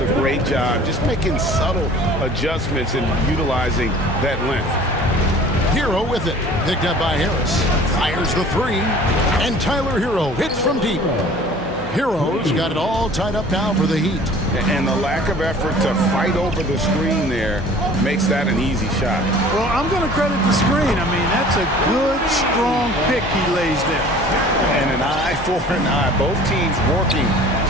a great job just making subtle adjustments and utilizing that length. Hero with it. Picked up by Harris. Fires the three. And Tyler Hero hits from deep. Hero's got it all tied up now for the Heat. And the lack of effort to fight over the screen there makes that an easy shot. Well, I'm going to credit the screen. I mean, that's a good, strong pick he lays there. And an eye for an eye. Both teams working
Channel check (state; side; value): noise; left; hum, 13 dB below the sound